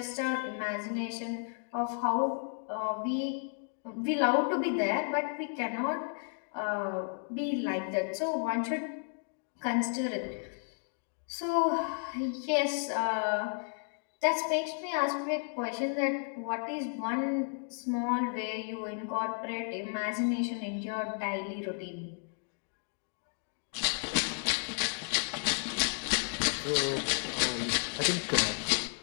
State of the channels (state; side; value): silent; right; 56 dB below the other